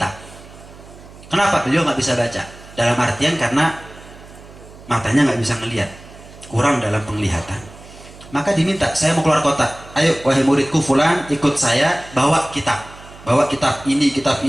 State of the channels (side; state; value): right; noise; hum, 20 dB below the sound